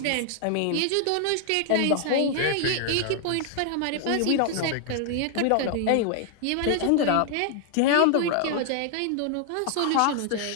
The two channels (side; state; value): both; different; correlation 0.00